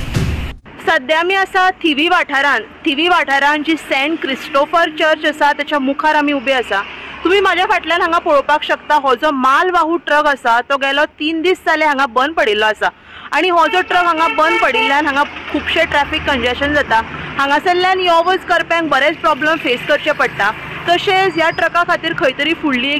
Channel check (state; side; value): identical; both; correlation 1.00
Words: सध्या आमी आसा थिवी वाठारांत जी सेंट क्रिस्टोफर चर्च आसा त्याच्या मुखार आमी उबे आसा। तुम्ही माझ्या फाटल्यान हांगा पळोवपाक शकता, हो जो मालवाहू ट्रक आसा तो गेलो 3 दीस जाले हांगा बंद पडिल्लो आसा आणि हो जो ट्रक हांगा बंद पडिल्ल्यान हांगा खूबशे ट्रॅफिक कंजेशन जाता। हांगासरल्यान यो वच करप्यांक बरेच प्रॉब्लेम फेस करचे पडटा। तशेंच ह्या ट्रका खातीर खंय तरी फुडली